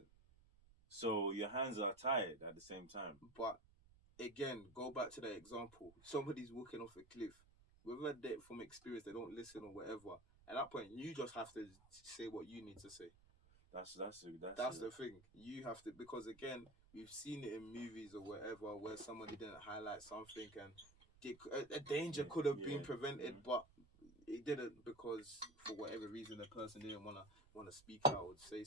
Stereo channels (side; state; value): right; noise; rumble, 25 dB below the sound